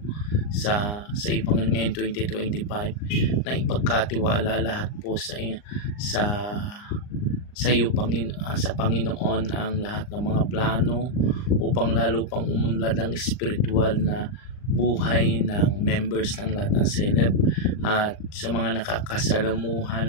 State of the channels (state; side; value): late; right; 39 ms